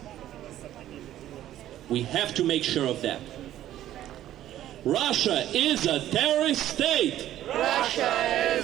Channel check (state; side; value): quieter; left; 12.7 dB